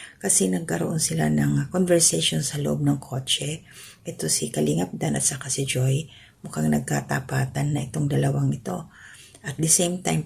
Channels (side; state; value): both; identical; correlation 1.00